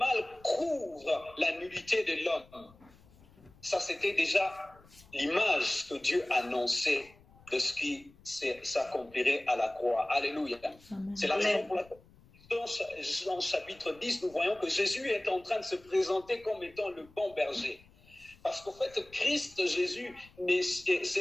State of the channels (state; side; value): noise; left; rumble, 26 dB below the sound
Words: couvre la nudité de l'homme. Ça, c'était déjà l'image que Dieu annonçait de ce qui s'accomplirait à la croix. Alléluia. Amen. C'est la raison pour laquelle dans chapitre 10, nous voyons que Jésus est en train de se présenter comme étant le bon berger. Parce qu'en fait, Christ, Jésus,